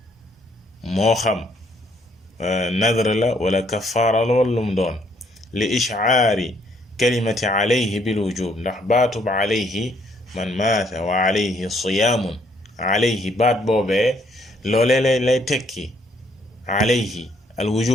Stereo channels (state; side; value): normal; both; correlation 0.68